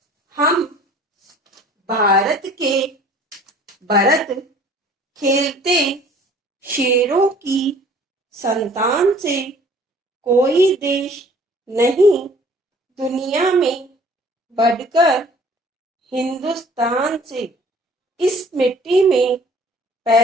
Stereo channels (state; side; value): normal; both; correlation 0.52